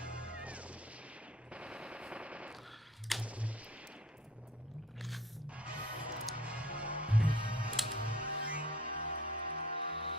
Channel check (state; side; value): normal; both; correlation 0.51